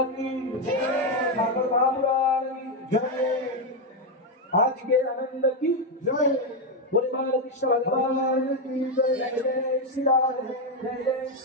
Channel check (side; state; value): both; normal; correlation 0.05